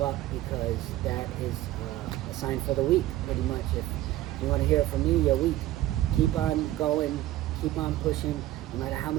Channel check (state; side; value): quieter; left; 15.0 dB